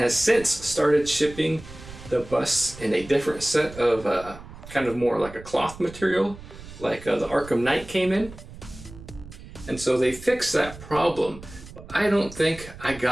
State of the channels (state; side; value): noise; right; rumble, 16 dB below the sound